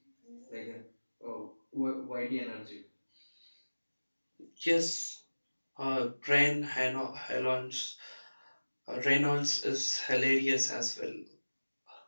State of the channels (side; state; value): both; inverted; correlation -1.00